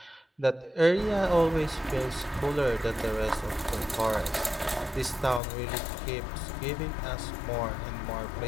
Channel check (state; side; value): drops out; right; at 5.4 s